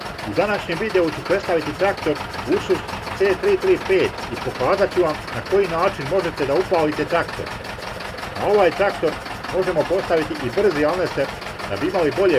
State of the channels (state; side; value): identical; both; correlation 1.00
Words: U današnjem videu ću predstaviti traktor Ursus C335 i pokazat ću vam na koji način možete da upalite traktor. Na ovaj traktor možemo postaviti i brzi alneser da bi imali